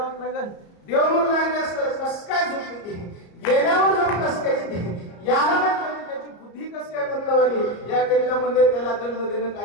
लागल देव म्हणून लागले असतं कस काय झोप येते गेल्यावर झोप कस काय येते याला म्हणजे त्याची बुद्धी कस काय बदलवाली या करिता म्हणजे त्याला दंड देणं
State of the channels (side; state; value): right; late; 34 ms